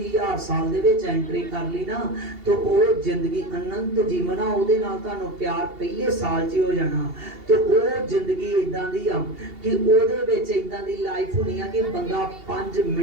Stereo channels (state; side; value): late; left; 2.8 ms